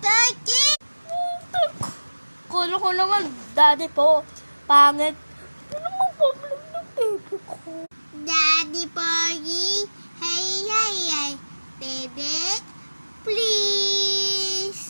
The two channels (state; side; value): inverted; both; correlation -1.00